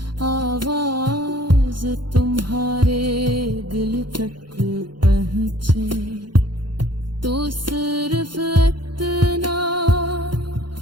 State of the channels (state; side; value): late; left; 0.72 ms